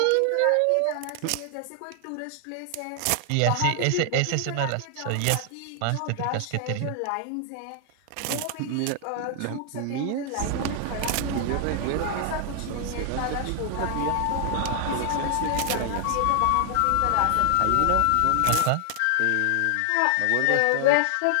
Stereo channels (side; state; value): both; different; correlation 0.00